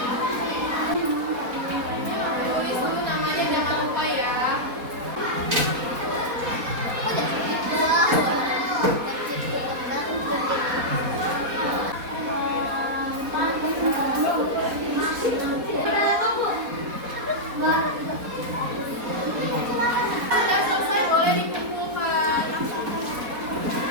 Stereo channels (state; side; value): late; left; 4.2 ms